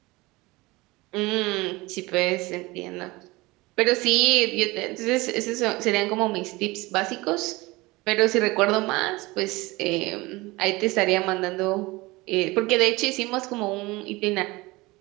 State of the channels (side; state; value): left; quieter; 22.0 dB